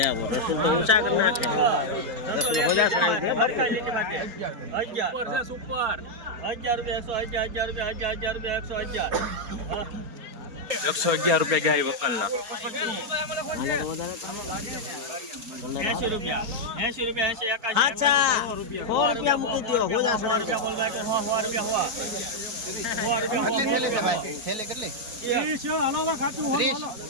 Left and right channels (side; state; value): left; late; 4.3 ms